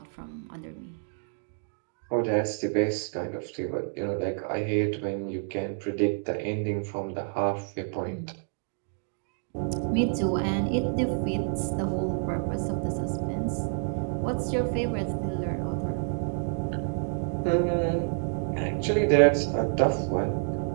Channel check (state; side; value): silent; left; 59 dB below the other